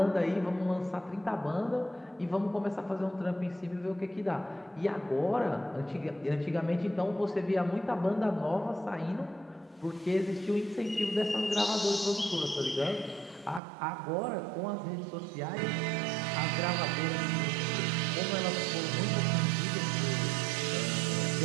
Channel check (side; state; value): left; drops out; at 13.6 s